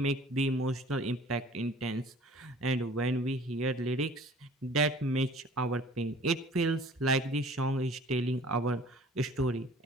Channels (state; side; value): normal; both; correlation 0.49